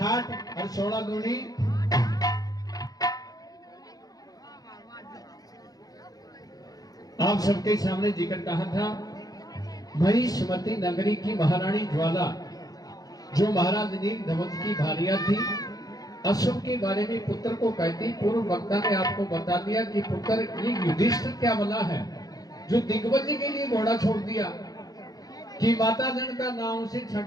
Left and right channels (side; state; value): right; late; 0.18 ms